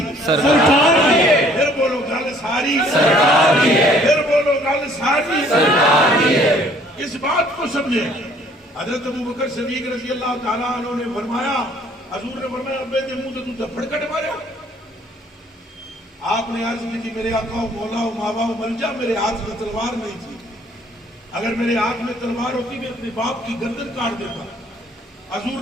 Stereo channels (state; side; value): normal; both; correlation 0.59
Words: سرکار کی ہے، پھر بولو گل ساری سرکار کی ہے، پھر بولو گل ساری سرکار کی ہے۔ اس بات کو سمجھے، حضرت ابوبکر صدیق رضی اللہ تعالیٰ عنہ نے فرمایا، حضور نے فرمایا ابے دے منہ تو تھپڑ کٹ ماریا۔ آپ نے عرض کی تھی میرے آقا و مولا و ماوا و ملجا، میرے ہاتھ میں تلوار نہیں تھی، اگر میرے ہاتھ میں تلوار ہوتی میں اپنے باپ کی گردن کاٹ دیتا۔ حضور